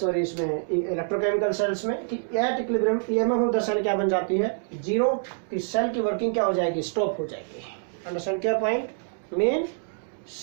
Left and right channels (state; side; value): silent; left; digital silence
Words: इसमें इलेक्ट्रोकेमिकल सेल्स में, कि at equilibrium EMF of the cell क्या बन जाती है, जीरो। कि सेल की वर्किंग क्या हो जाएगी, स्टॉप हो जाएगी। अंडरस्टैंड क्या पॉइंट, मीन